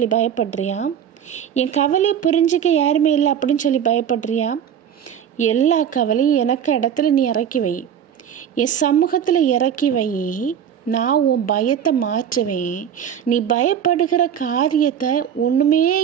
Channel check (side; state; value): left; quieter; 8.8 dB